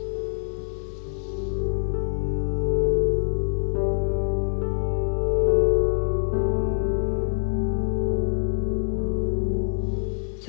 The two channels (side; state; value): right; silent; digital silence